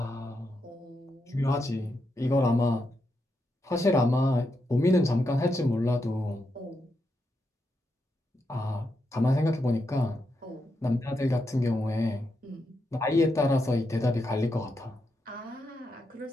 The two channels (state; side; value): normal; both; correlation 0.84